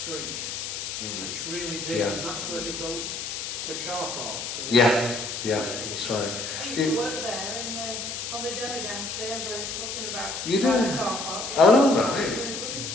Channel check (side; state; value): left; noise; hiss, 5 dB below the sound